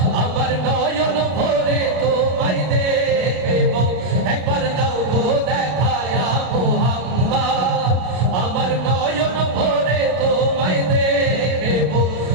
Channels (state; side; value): late; left; 33 ms